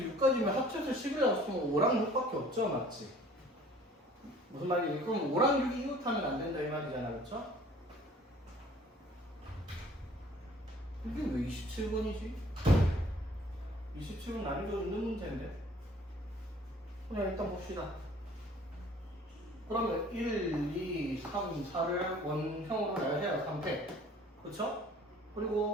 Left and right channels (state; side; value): normal; both; correlation 0.52